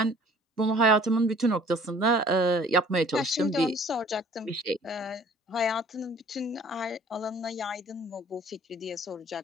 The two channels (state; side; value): normal; both; correlation 0.53